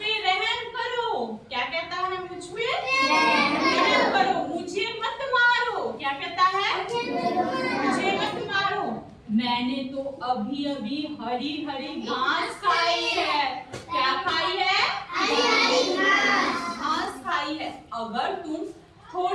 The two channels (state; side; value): identical; both; correlation 1.00